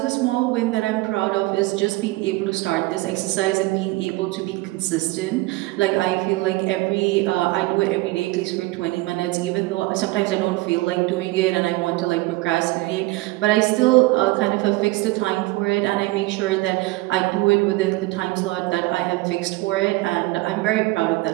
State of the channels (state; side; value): quieter; left; 20.5 dB